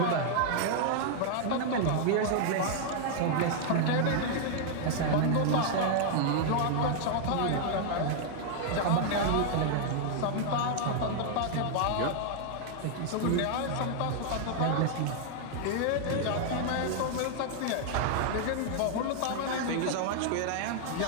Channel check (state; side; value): different; both; correlation 0.00